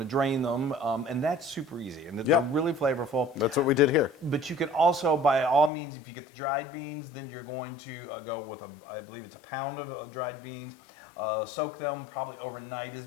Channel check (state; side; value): drops out; right; at 5.7 s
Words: to drain them, and that's super easy, and they're really flavorful. That's what we did here. But you can also, by all means, if you get the dried beans, then you're going to go with I believe it's a pound of dried beans. Soak them probably overnight is